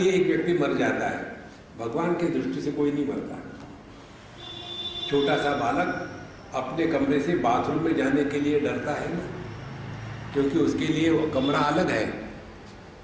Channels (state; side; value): identical; both; correlation 1.00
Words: एक व्यक्ति मर जाता है, भगवान की दृष्टि से कोई नहीं मरता। छोटा सा बालक अपने कमरे से बाथरूम में जाने के लिए डरता है ना, क्योंकि उसके लिए वो कमरा अलग है